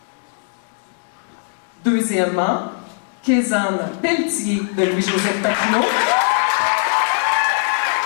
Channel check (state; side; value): silent; right; digital silence